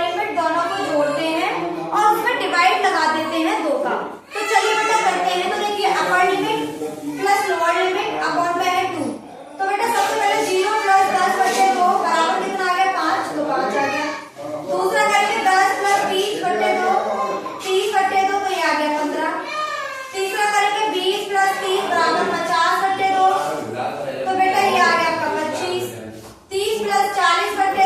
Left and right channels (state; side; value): identical; both; correlation 1.00